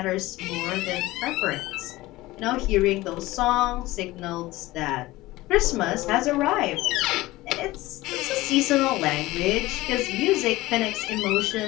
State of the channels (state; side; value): quieter; right; 18.6 dB